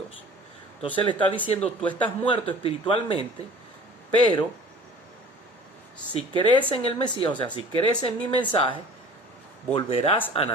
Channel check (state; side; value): normal; both; correlation 0.45